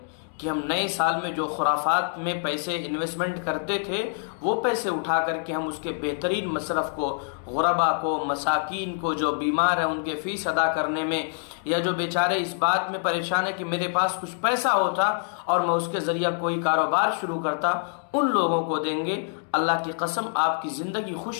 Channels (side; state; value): right; silent; digital silence